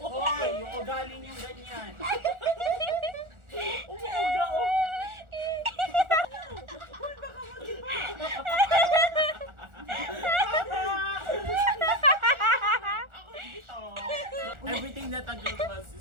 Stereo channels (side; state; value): left; late; 1.4 ms